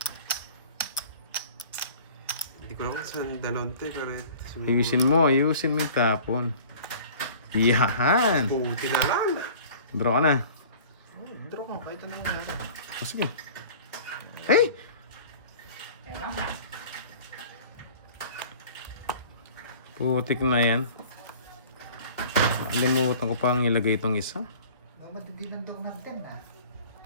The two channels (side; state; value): both; inverted; correlation -0.45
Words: Hindi ko alam kung saan dalawang te, pero... Ayusin mo yung tapon. Yahan. Puti na lang. Draw ka na. Draw ko, kahit ano naman natin. O, sige. Hey! Ayan na. Putik na yan. Limutan ko pang ilagay itong isa. Madidinan daw ng 10 na.